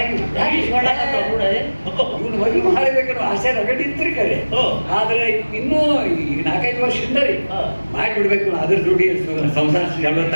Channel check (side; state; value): both; inverted; correlation -1.00